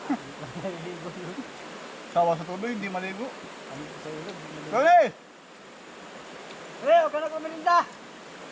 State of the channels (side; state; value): both; identical; correlation 1.00